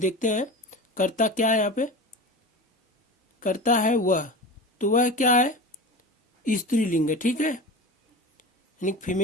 हैं कर्ता क्या है, यहाँ पे कर्ता है वह, तो वह क्या है, स्त्रीलिंग है। ठीक है, यानी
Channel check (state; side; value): normal; both; correlation 0.31